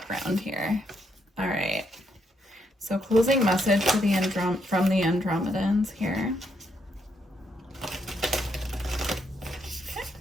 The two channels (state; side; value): normal; both; correlation 0.76